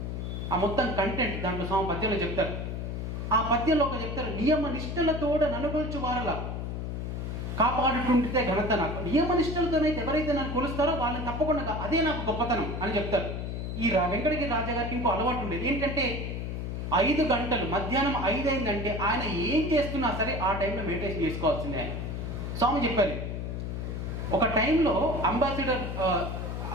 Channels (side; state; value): left; noise; hum, 4 dB below the sound